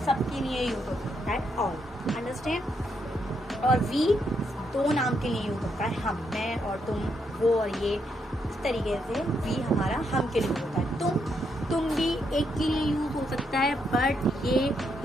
सबके लिए यूज होता है, ऑल, अंडरस्टैंड। और वी 2 नाम के लिए यूज होता है, हम, मैं और तुम, वो और ये, इस तरीके से वी हमारा हम के लिए होता है। तुम भी एक के लिए यूज हो सकता है, बट ये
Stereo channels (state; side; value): normal; both; correlation 0.78